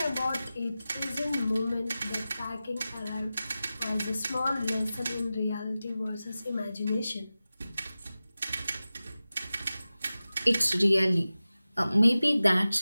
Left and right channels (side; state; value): both; inverted; correlation -0.95